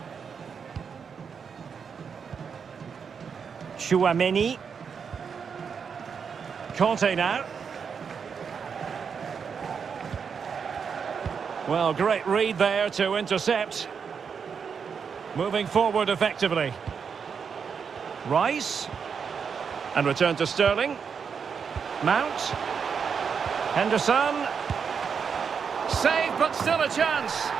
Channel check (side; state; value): left; quieter; 6.4 dB